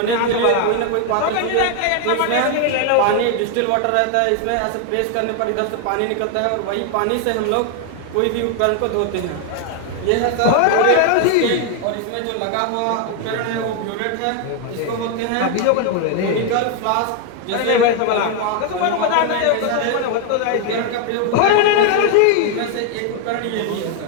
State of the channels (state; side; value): different; both; correlation 0.01